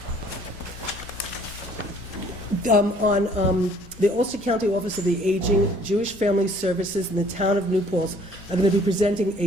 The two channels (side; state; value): both; normal; correlation 0.58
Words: On the Ulster County Office of the Aging, Jewish Family Services in the town of New Paltz are going to be presenting